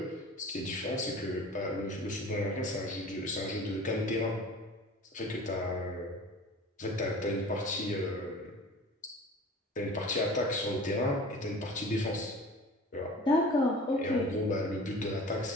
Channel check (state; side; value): normal; both; correlation 0.41